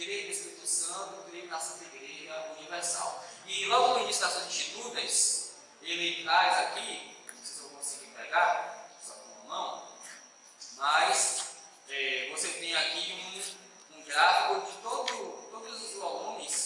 no Espírito Santo, creio na Santa Igreja Universal. E logo no início das suas Institutas, ele traz aqui, não sei se eu vou conseguir pegar, só com a mão, mas você tem aqui um gráfico de todos os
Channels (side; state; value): both; identical; correlation 1.00